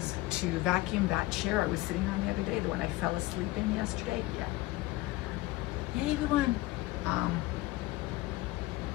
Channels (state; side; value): quieter; right; 18.8 dB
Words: to vacuum that chair I was sitting on the other day, the one I fell asleep in yesterday. Yeah. Yay, everyone.